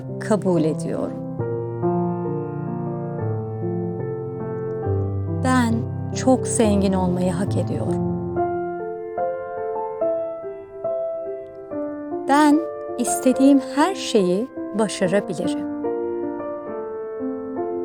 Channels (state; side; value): identical; both; correlation 1.00